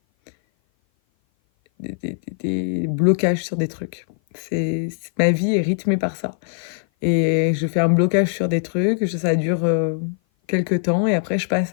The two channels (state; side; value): silent; right; 56 dB below the other